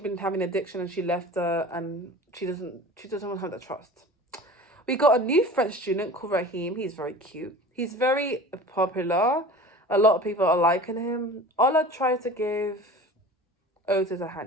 having addiction and she left her, and she doesn't want to have that trust. We got a new French student called Raheem. He's very cute. He's very popular. A lot of people are liking him. Ola tries to give Otis a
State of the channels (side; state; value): both; normal; correlation 0.39